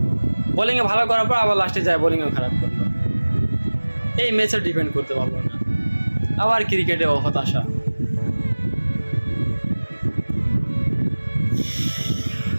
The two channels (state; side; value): inverted; both; correlation -1.00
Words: বোলিংয়ে ভালো করার পর আবার লাস্টে যায় বোলিংও খারাপ করলো। এই ম্যাচে ডিপেন্ড করতে পারলো না। আবার ক্রিকেটে হতাশা।